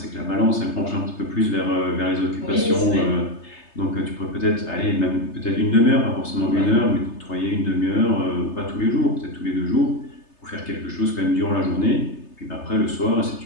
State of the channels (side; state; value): right; late; 3.3 ms